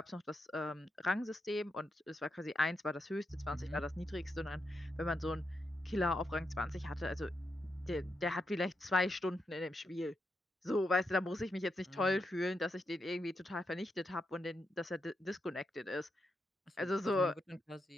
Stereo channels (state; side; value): normal; both; correlation 0.84